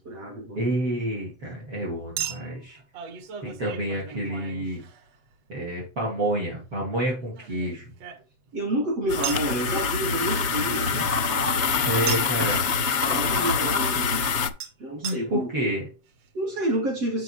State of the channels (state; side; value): late; left; 7.7 ms